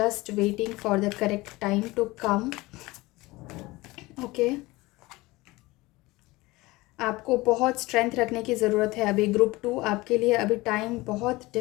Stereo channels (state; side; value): quieter; right; 21.0 dB